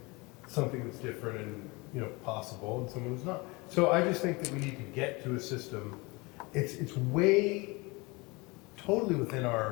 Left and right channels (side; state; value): right; quieter; 25.8 dB